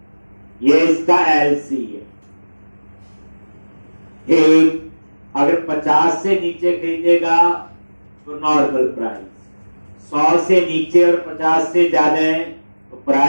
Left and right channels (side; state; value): both; inverted; correlation -1.00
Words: ये इसका एलसी है। ठीक, अगर 50 से नीचे खरीदेगा तो नॉर्मल प्राइस, 100 से नीचे और 50 से ज्यादा है तो